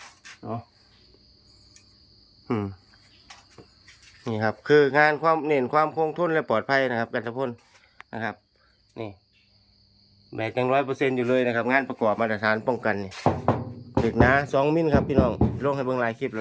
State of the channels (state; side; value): identical; both; correlation 1.00